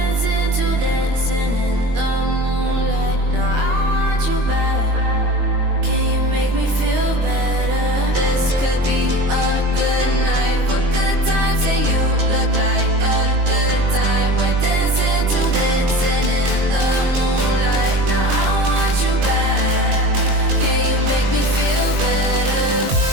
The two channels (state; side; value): late; left; 22 ms